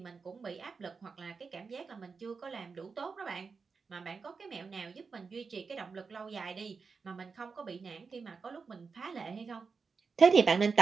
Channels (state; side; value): quieter; left; 5.0 dB